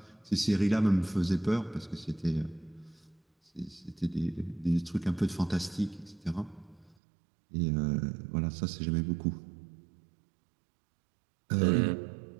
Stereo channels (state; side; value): drops out; left; at 7.0 s